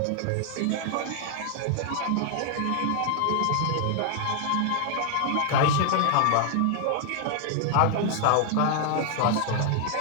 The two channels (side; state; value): both; different; correlation 0.00